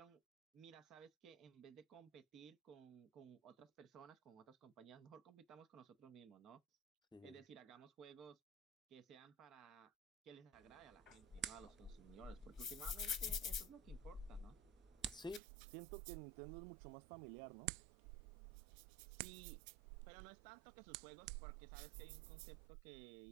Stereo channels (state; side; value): drops out; left; at 15.4 s